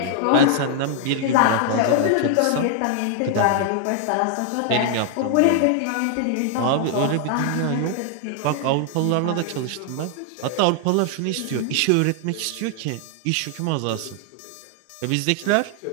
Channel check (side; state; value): both; different; correlation 0.00